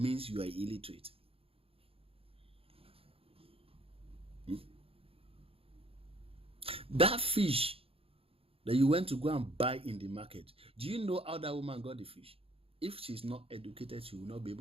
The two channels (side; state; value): left; late; 0.27 ms